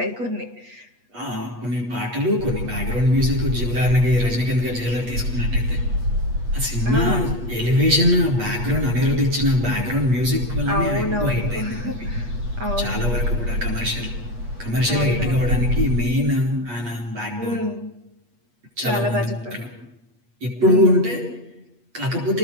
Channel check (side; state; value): left; late; 8.3 ms